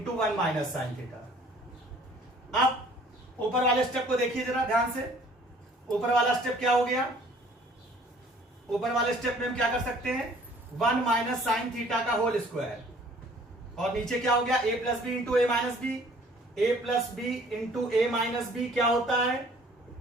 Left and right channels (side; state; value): both; normal; correlation 0.55